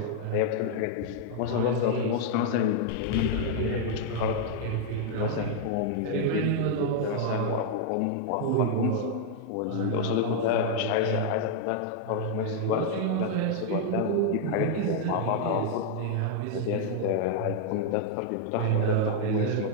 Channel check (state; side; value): different; both; correlation 0.00